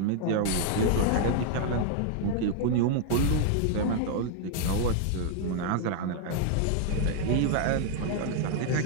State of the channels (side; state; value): both; different; correlation 0.00